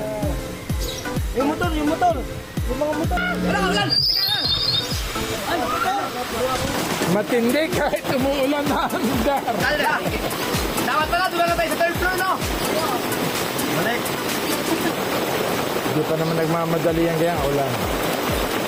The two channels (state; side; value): identical; both; correlation 1.00